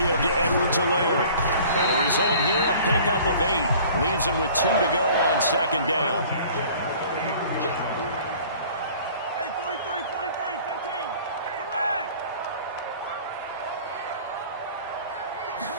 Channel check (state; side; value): inverted; both; correlation -0.49